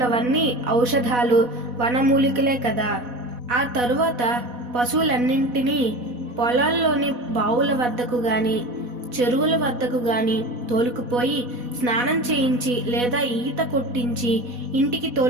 ఔషధాలు, వనమూలికలే కదా. ఆ తరువాత పశువులన్నింటినీ పొలాల్లోని బావుల వద్దకు గాని, చెరువుల వద్దకు గాని తోలుకుపోయి స్నానం చేయించి లేదా ఈత కొట్టించి ఇంటికి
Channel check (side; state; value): left; late; 4.1 ms